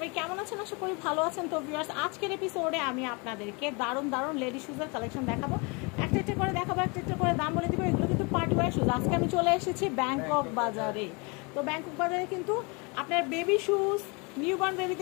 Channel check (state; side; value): quieter; right; 30.3 dB